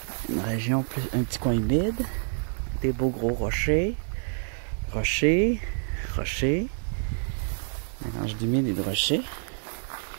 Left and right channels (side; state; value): left; silent; 60 dB below the other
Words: région, un petit coin humide. Des beaux gros rochers. Rochers. Rochers. Mélange d'humide et de rochers.